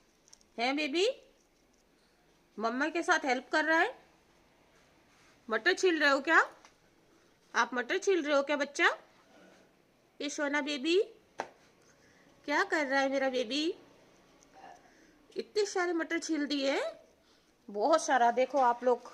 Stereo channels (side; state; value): both; identical; correlation 1.00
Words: है बेबी? मम्मा के साथ हेल्प कर रहा है? मटर छील रहे हो क्या? आप मटर छील रहे हो क्या बच्चा? ये सोना बेबी क्या कर रहा है मेरा बेबी? इतने सारे मटर छील दिए, बहुत सारा। देखो आप लोग,